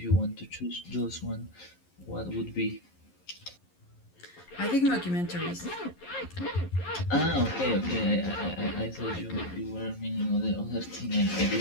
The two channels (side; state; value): right; late; 11 ms